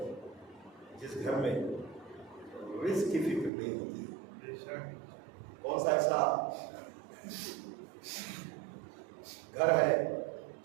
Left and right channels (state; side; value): drops out; left; at 3.5 s